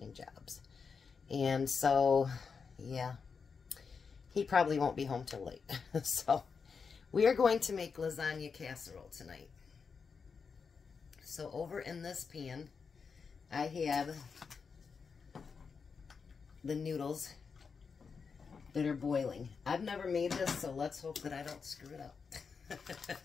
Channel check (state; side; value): quieter; right; 5.5 dB